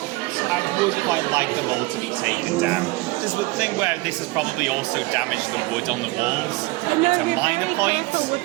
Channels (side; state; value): left; quieter; 22.3 dB